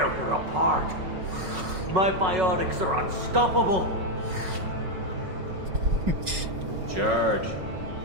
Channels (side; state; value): left; late; 5.4 ms